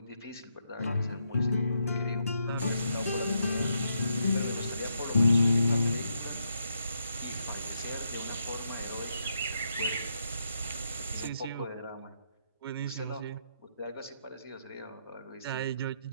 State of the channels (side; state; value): both; inverted; correlation -0.80